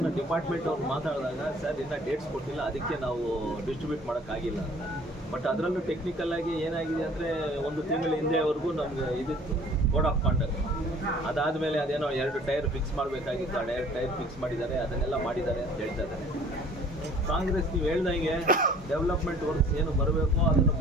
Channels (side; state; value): both; normal; correlation 0.52